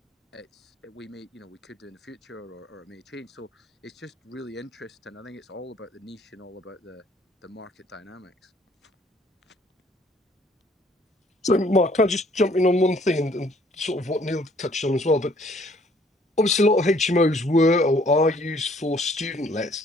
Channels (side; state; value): both; normal; correlation 0.61